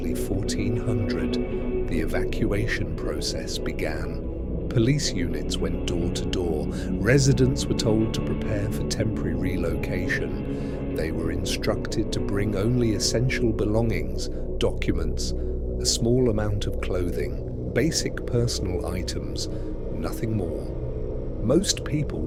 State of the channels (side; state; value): both; identical; correlation 1.00